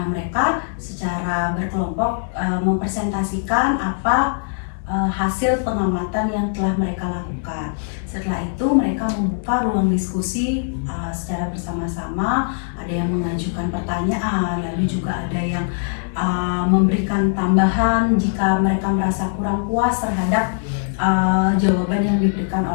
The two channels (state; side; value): silent; right; digital silence